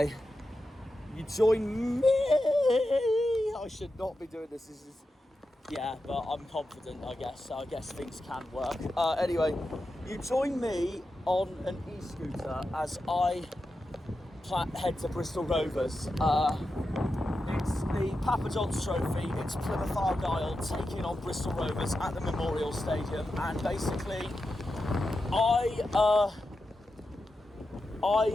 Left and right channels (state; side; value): normal; both; correlation 0.90